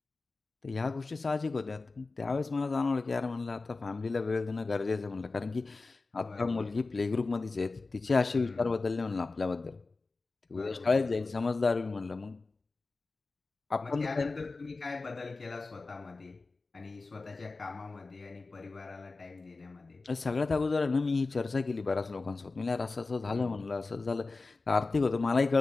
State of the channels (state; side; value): quieter; right; 3.7 dB